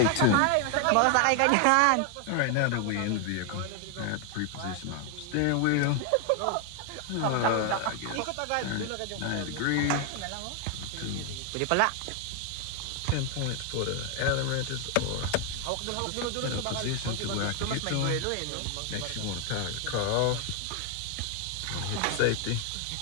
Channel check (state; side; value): different; both; correlation 0.00